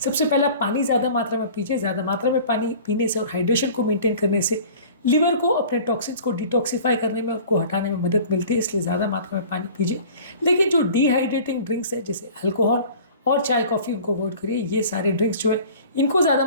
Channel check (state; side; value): inverted; both; correlation -0.44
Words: पहले पानी ज़्यादा मात्रा में पीजिए। ज़्यादा मात्रा में पानी पीने से और हाइड्रेशन को मेंटेन करने से लिवर को अपने टॉक्सिन्स को डिटॉक्सिफाई करने में, उनको हटाने में मदद मिलती है, इसलिए ज़्यादा मात्रा में पानी पीजिए। लेकिन जो डिहाइड्रेटिंग ड्रिंक्स है जैसे अल्कोहल और चाय कॉफ़ी, उनको अवॉइड करिए। ये सारे ड्रिंक्स जो है इनको ज़्यादा